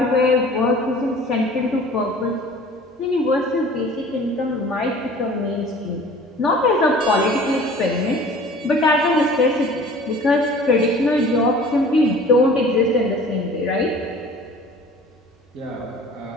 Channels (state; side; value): normal; both; correlation 0.46